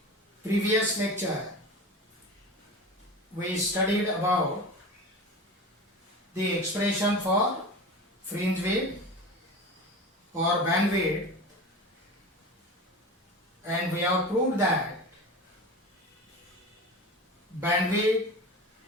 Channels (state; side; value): normal; both; correlation 0.31